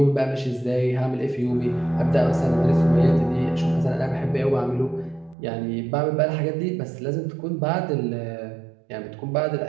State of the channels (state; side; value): drops out; left; at 5.4 s